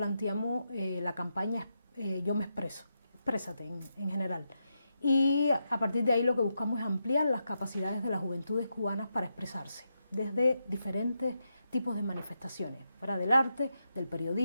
la campaña Yo me expreso, exprésate en general. Y a partir de ahí lo que buscamos es ampliar las capacidades de las juventudes cubanas para expresarse desde diferentes tipos de manifestaciones, fuera del arte, del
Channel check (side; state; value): both; inverted; correlation -0.85